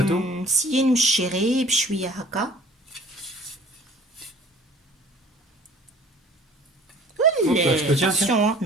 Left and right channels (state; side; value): normal; both; correlation 0.50